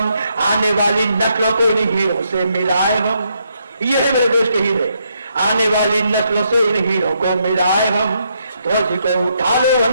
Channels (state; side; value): inverted; both; correlation -0.77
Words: आने वाली नस्लों को इन हीरों से मिलाए हम, ये है मेरे देश के हीरे, आने वाली नस्लों से इन हीरों को मिलाए हम। ध्वज को उठा लो